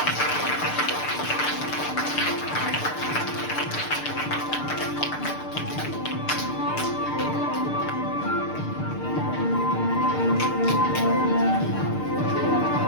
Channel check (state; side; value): late; right; 6.7 ms